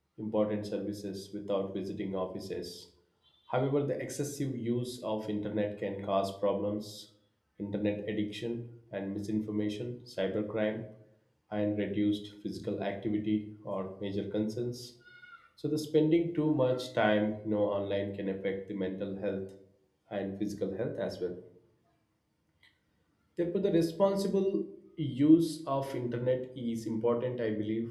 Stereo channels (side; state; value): both; identical; correlation 1.00